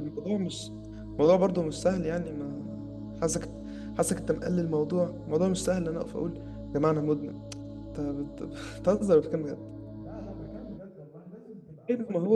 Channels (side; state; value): both; identical; correlation 1.00